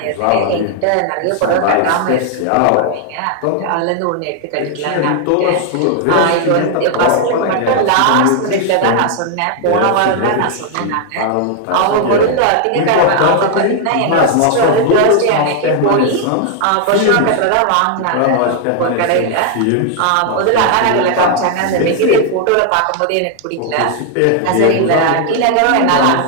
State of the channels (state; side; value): different; both; correlation 0.00